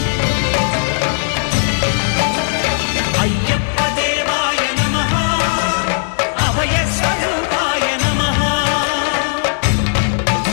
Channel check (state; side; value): silent; right; digital silence